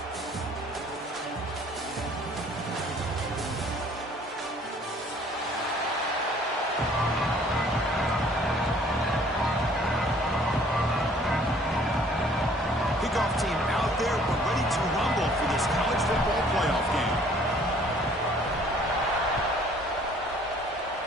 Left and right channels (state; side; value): normal; both; correlation 0.57